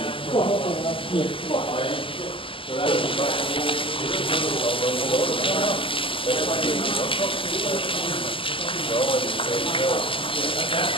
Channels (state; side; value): late; right; 0.25 ms